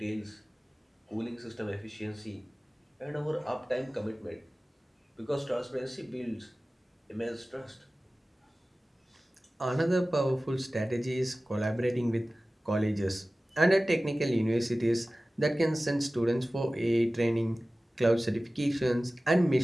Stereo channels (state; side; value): normal; both; correlation 0.97